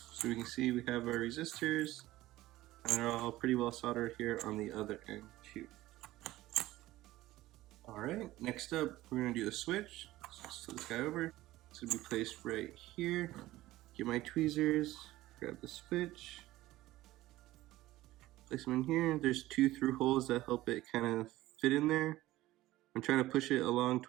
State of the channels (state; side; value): quieter; left; 16.7 dB